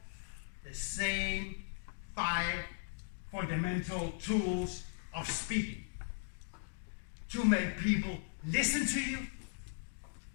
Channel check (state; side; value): silent; right; digital silence